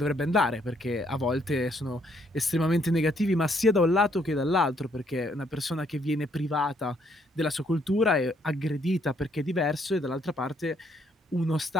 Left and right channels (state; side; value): normal; both; correlation 0.69